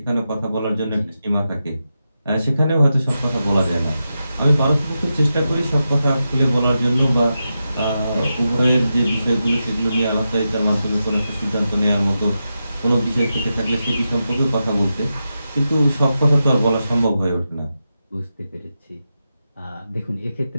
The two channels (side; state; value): both; inverted; correlation -0.89